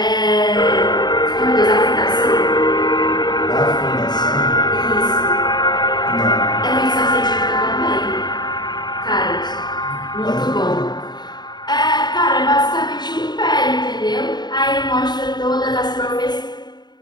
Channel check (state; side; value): late; right; 0.20 ms